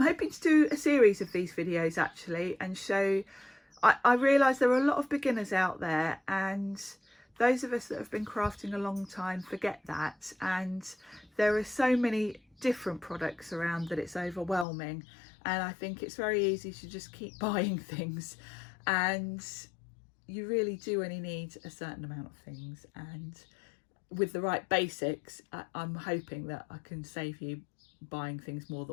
hoping to do a series of these videos actually, and show, I realise there are a lot of beginners out there, and those of us that have been crafting a long time forget that, and there are so many different products around that it's overwhelming, and I think it's very easy to just keep buying things, and you really do only need a certain amount of things. And with the right basics, I'm hoping that I can save you buying things more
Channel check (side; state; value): right; drops out; at 14.7 s